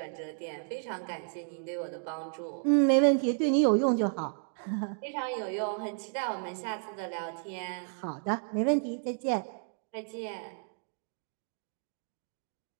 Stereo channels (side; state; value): left; silent; digital silence